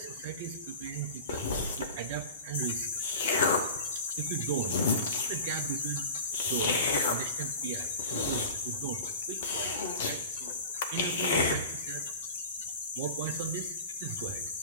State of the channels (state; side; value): inverted; both; correlation -0.36